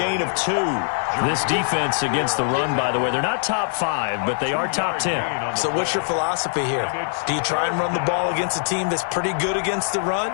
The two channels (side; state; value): right; silent; digital silence